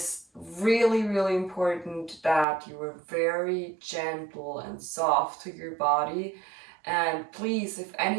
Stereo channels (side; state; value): left; drops out; at 2.5 s